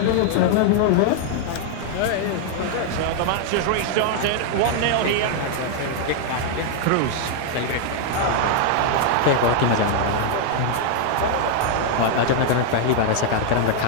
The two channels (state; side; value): different; both; correlation 0.00